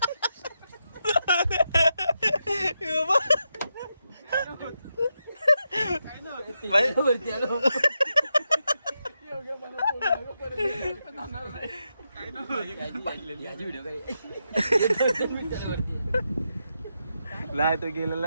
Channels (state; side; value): inverted; both; correlation -0.85